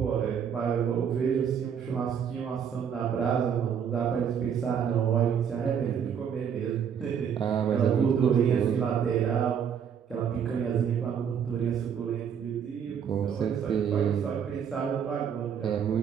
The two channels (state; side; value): quieter; left; 7.9 dB